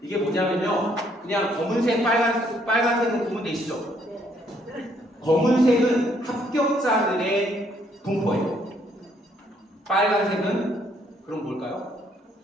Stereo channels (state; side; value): normal; both; correlation 0.68